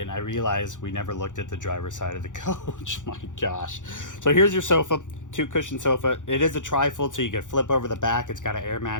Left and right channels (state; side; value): late; right; 0.86 ms